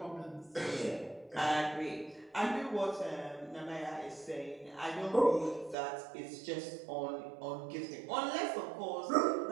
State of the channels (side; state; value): left; drops out; at 5.8 s